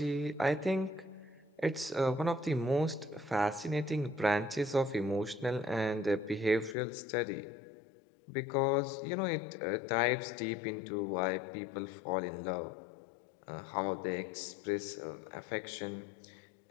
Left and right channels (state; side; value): drops out; right; at 6.8 s